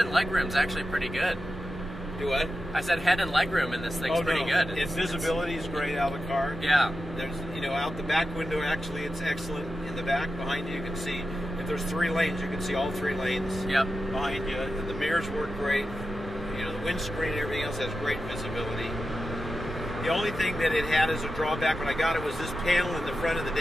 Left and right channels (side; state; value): both; normal; correlation 0.91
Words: legroom's actually pretty good. Do what? I said head and legroom in this thing's pretty good. Its visibility is great out of the car. Yeah. There's, you know, out the back window, actually, it's excellent. In the back, behind you can see, if there's 3 lanes, you can see all 3 lanes. Yep. Behind you. And the mirrors work great. You know, the windscreen and everything else has great visibility. The only thing that it had as a drawback when I got it was this panel in the front of the